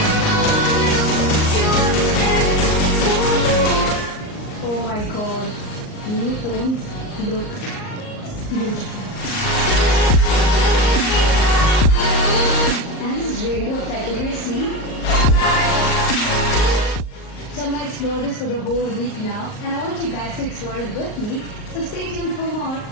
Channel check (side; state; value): right; late; 38 ms